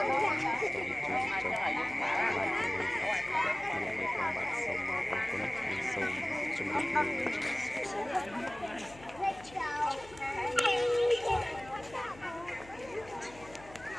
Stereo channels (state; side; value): noise; left; hum, 20 dB below the sound